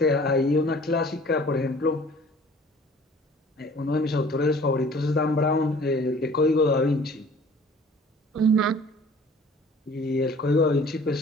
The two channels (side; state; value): both; normal; correlation 0.50